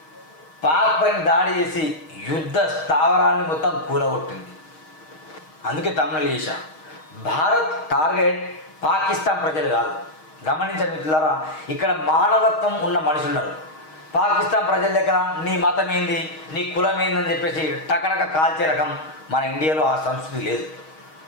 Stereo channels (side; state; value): right; late; 6.4 ms